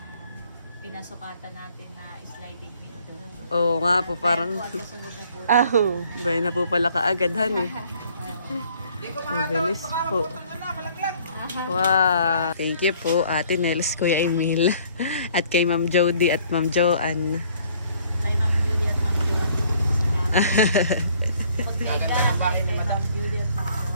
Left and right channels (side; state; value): both; inverted; correlation -0.60